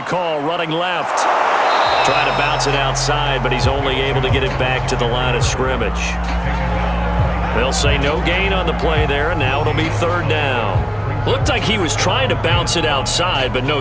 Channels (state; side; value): identical; both; correlation 1.00